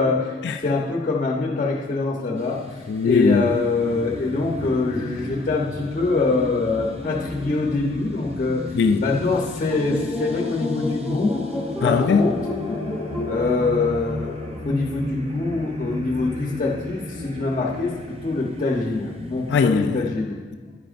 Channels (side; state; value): right; quieter; 3.3 dB